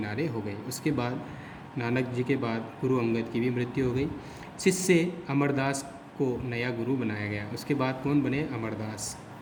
हो गई। उसके बाद नानक जी के बाद गुरु अंगद की भी मृत्यु हो गई। शिष्य अमरदास को नया गुरु बनाया गया। उसके बाद कौन बने? अमरदास।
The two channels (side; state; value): both; identical; correlation 1.00